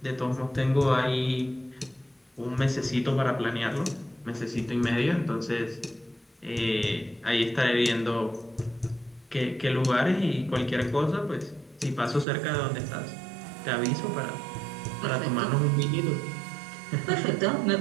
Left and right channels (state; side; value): drops out; left; at 12.2 s